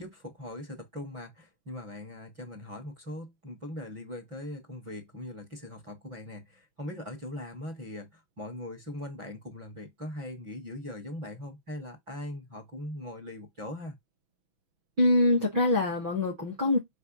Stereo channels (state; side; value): late; left; 6.1 ms